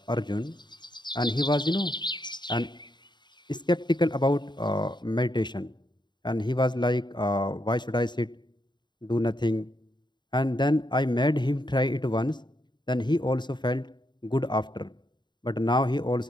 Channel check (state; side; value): late; right; 0.22 ms